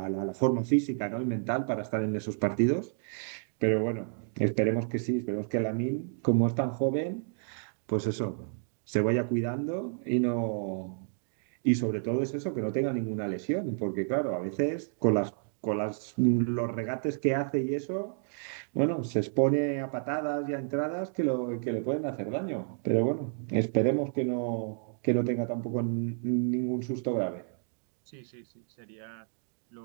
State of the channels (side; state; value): left; silent; digital silence